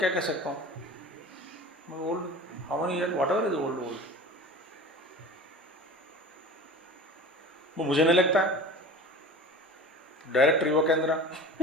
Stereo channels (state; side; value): normal; both; correlation 0.37